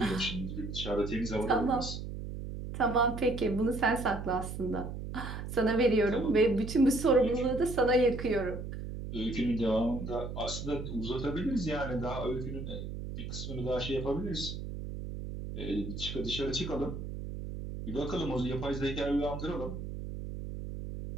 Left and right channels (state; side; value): noise; right; hum, 7 dB below the sound